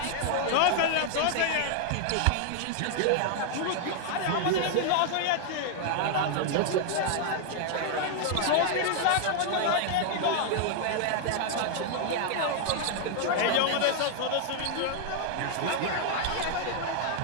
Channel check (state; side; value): different; both; correlation 0.00